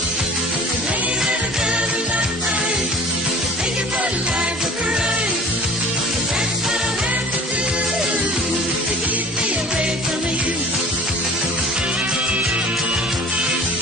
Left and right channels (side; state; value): both; normal; correlation 0.45